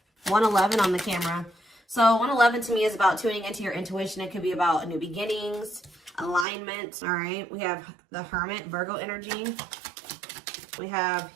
111 on the camera. So 111 to me is about tuning into your intuition. It could be about new beginnings, alignment. All right. We have the Hermit, Virgo energy. We have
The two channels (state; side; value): drops out; left; at 6.5 s